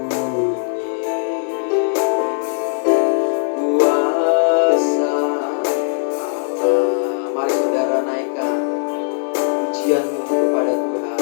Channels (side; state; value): right; silent; digital silence